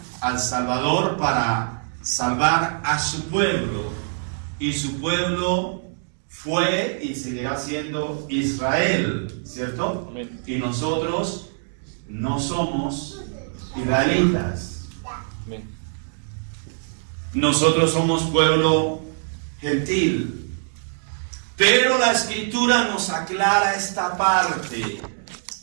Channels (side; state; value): left; silent; digital silence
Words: al Salvador para salvar a su pueblo, y su pueblo fue y seguirá siendo Israel, ¿cierto? Amén. Y nosotros no somos israelitas. Amén. Nosotros somos pueblo gentil. Pero la Escritura nos aclara esta parte.